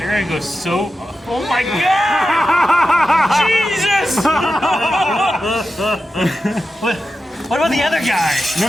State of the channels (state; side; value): normal; both; correlation 0.91